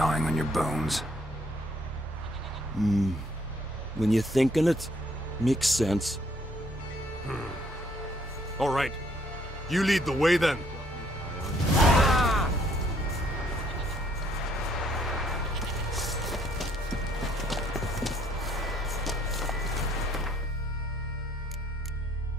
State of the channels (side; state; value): both; normal; correlation 0.66